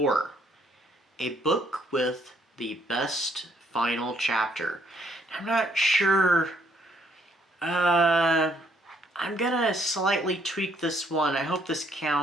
a book with the best final chapter. I'm not sure, I'm gonna slightly tweak this one. I hope this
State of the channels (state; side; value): normal; both; correlation 0.68